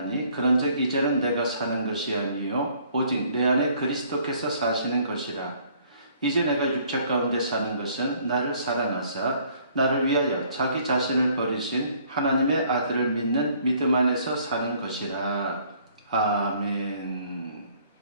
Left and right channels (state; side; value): inverted; both; correlation -0.61